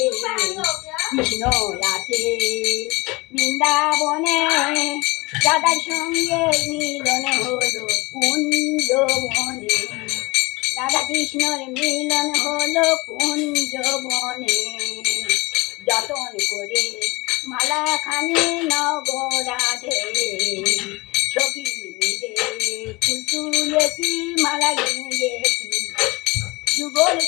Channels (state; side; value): quieter; right; 23.8 dB